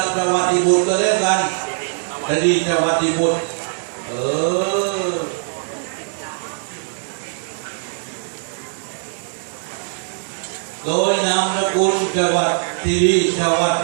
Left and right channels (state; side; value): silent; left; 65 dB below the other